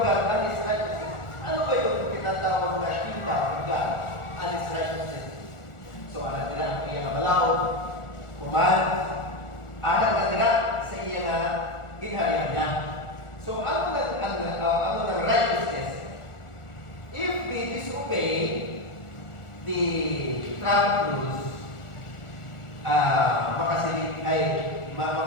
God and His righteousness. Ano ba yung tinatawag na kingdom of God and His righteousness? So, alam nila, kaya nga malaw, kuman, alam na nila sa iya nga ginharian niya. So, ano ng righteousness? If we disobey the traffic rules, makasilip ay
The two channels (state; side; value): late; right; 1.4 ms